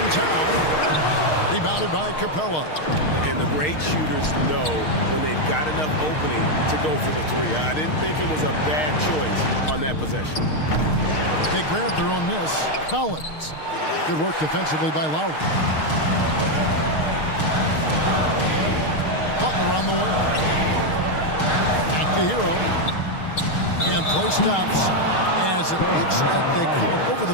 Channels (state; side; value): late; right; 6.5 ms